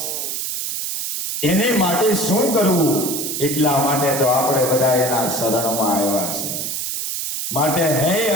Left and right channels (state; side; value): noise; right; hiss, 3 dB below the sound